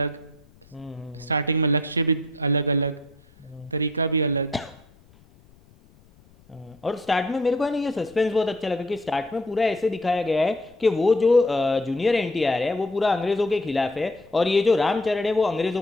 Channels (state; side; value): noise; left; rumble, 29 dB below the sound